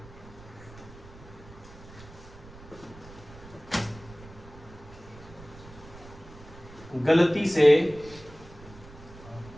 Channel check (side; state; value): right; noise; rumble, 18 dB below the sound